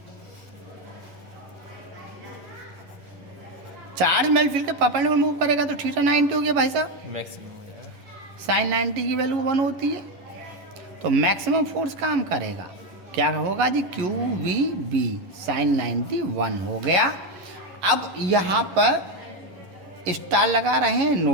Charge magnetic field के परपेंडिकुलर मूव करेगा तो थीटा 90 हो गया भाई साहब। साइन 90 की वैल्यू 1 होती है, तो मैक्सिमम फोर्स काम करेगा। क्या होगा जी? QVB sin 90 1 हो गया। अब यहाँ पर स्टार लगा रहे हैं,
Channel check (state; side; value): late; left; 11 ms